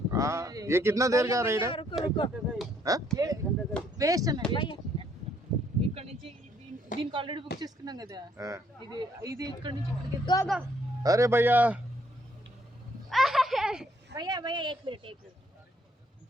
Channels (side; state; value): both; normal; correlation 0.68